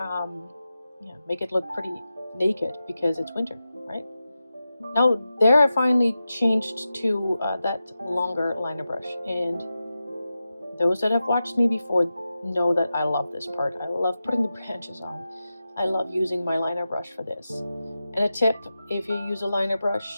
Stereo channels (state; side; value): inverted; both; correlation -0.92